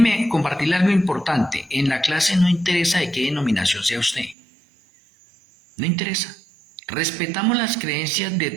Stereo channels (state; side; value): drops out; left; at 4.4 s